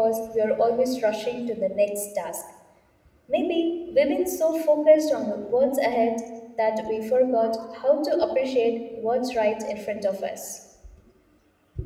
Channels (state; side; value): identical; both; correlation 1.00